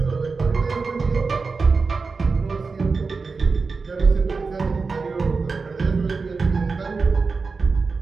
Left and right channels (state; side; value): quieter; left; 4.4 dB